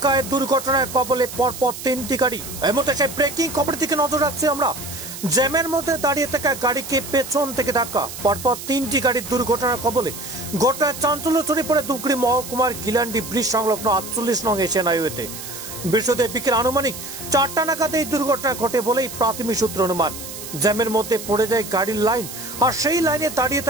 দুর্ঘটনায় কবলে পরপর তিনটি গাড়ি। এর মধ্যে সেই ব্রেকিং খবরের দিকে নজর রাখছি আমরা। জ্যামের মধ্যে দাঁড়িয়ে থাকা গাড়িকে পেছন থেকে ধাক্কা, পরপর তিনটি গাড়ির দুর্ঘটনার কবলে। ঘটনায় চাঞ্চল্য ছড়িয়ে পড়ে ধূপগুড়ি মহকুমার গিলান্ডি ব্রিজ সংলগ্ন 48 নং এশিয়ান হাইওয়েতে। বৃহস্পতিবার বিকেল আনুমানিক 4টা নাগাদ এই দুর্ঘটনা ঘটে বলেই প্রাথমিক সূত্র অনুমান। জ্যামের মধ্যে পড়ে যায় গাড়ির লাইন, আর সেই লাইনে দাঁড়িয়ে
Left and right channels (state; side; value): noise; right; hiss, 10 dB below the sound